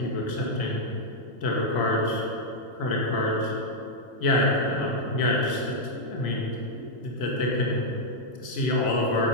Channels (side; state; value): left; late; 1.8 ms